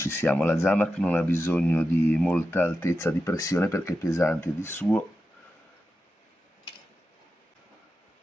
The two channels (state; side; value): normal; both; correlation 0.90